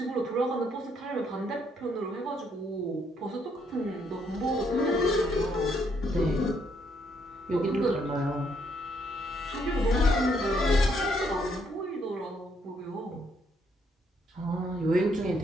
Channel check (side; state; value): both; normal; correlation 0.72